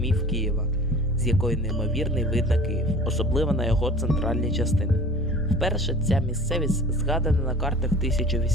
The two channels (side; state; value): both; normal; correlation 0.43